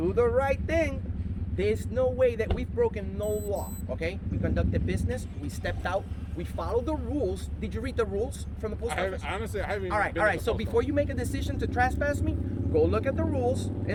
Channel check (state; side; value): identical; both; correlation 1.00